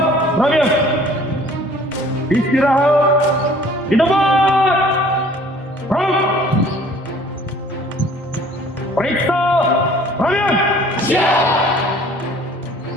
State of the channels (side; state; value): both; normal; correlation 0.53